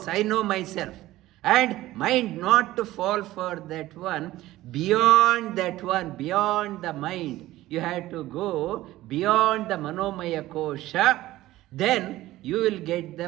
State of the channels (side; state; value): left; quieter; 16.2 dB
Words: I know myself. And mind not to fall for that one. Beyond that one, beyond the mind, you have to go beyond the Manomaya Kosha. Then you will get the